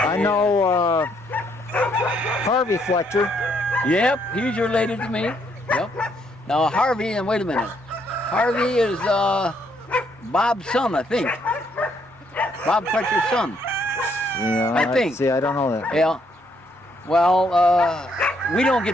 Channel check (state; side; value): normal; both; correlation 0.71